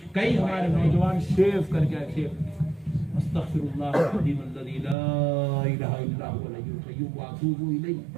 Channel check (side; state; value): left; drops out; at 5.0 s